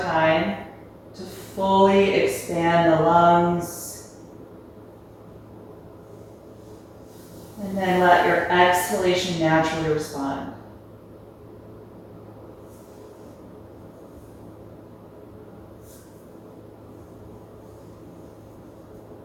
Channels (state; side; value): identical; both; correlation 1.00